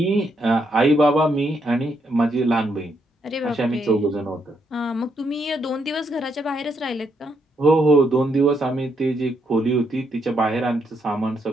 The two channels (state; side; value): normal; both; correlation 0.77